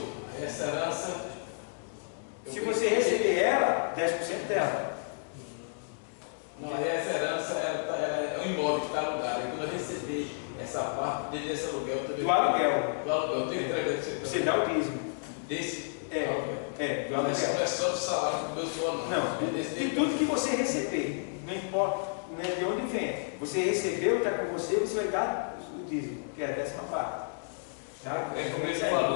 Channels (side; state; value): right; silent; digital silence